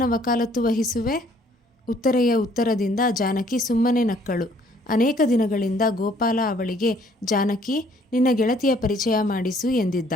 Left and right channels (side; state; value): both; normal; correlation 0.61